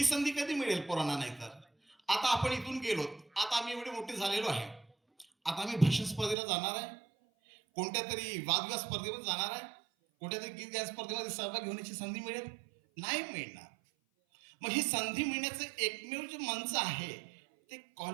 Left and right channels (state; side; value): drops out; left; at 6.4 s